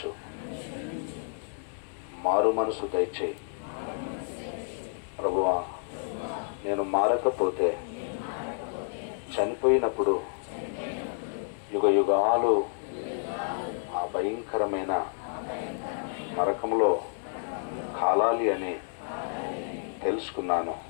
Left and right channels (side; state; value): right; silent; 58 dB below the other